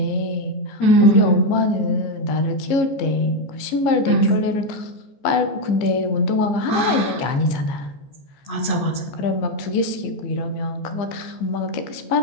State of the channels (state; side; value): late; right; 15 ms